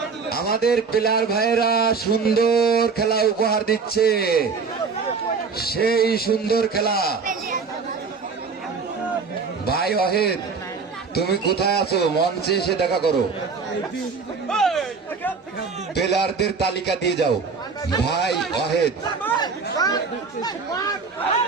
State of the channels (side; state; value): left; quieter; 5.0 dB